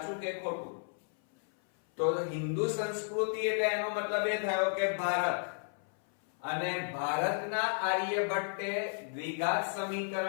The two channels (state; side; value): silent; right; 56 dB below the other